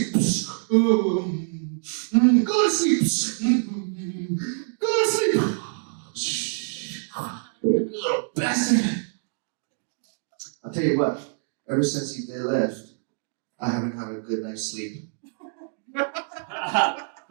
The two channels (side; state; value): left; silent; digital silence